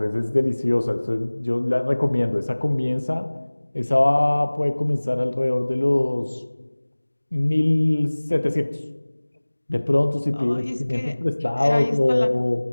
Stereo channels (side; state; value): both; inverted; correlation -1.00